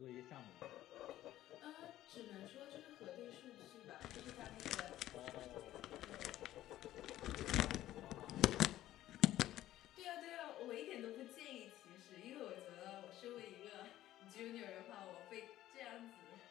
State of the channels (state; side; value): quieter; right; 14.0 dB